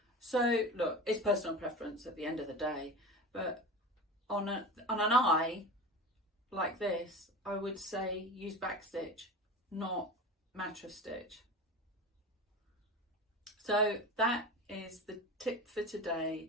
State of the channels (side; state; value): both; normal; correlation 0.30